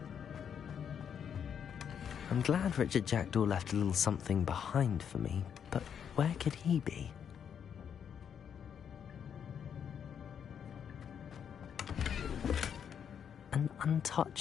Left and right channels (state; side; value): quieter; right; 8.0 dB